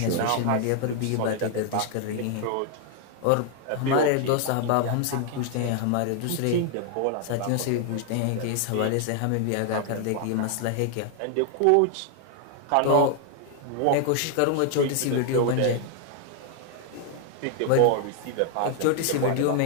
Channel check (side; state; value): both; different; correlation 0.00